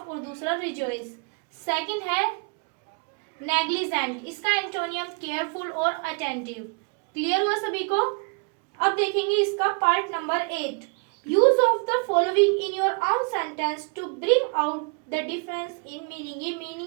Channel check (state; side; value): quieter; left; 35.5 dB